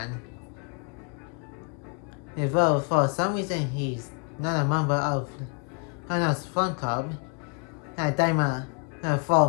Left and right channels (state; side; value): quieter; right; 36.5 dB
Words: Although for some reason he's not a member of Hana's fan club, Daima